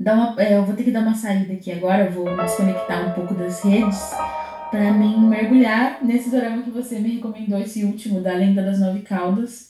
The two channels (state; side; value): identical; both; correlation 1.00